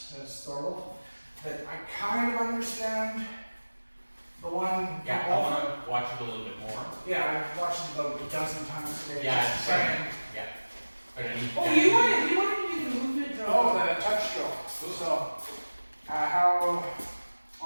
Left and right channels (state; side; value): inverted; both; correlation -1.00